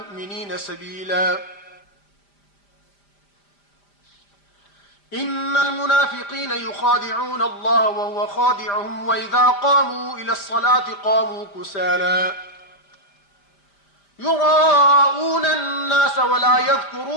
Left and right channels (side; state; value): right; late; 5.0 ms